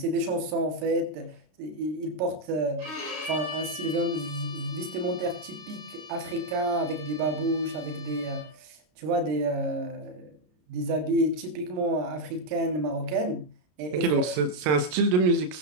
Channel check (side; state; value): left; late; 33 ms